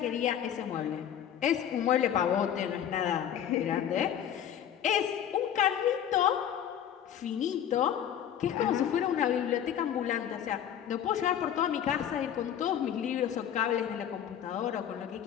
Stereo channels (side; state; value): right; quieter; 9.7 dB